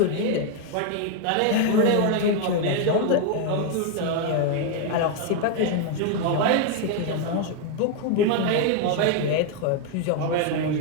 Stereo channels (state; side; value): different; both; correlation 0.01